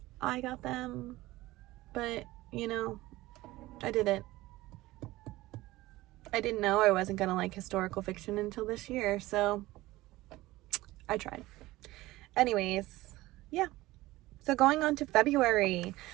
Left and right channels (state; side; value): quieter; left; 18.2 dB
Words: I got them, but you know, I didn't. I didn't know I wasn't gonna like historical fiction until this year, so I tried. Anyways, yeah. So going on to February,